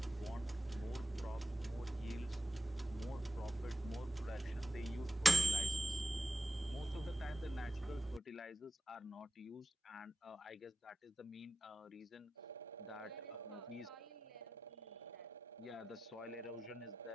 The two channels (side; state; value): both; normal; correlation 0.94